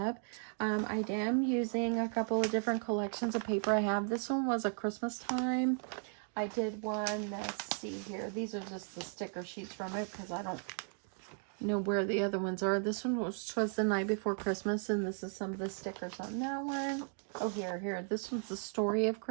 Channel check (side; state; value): left; silent; 54 dB below the other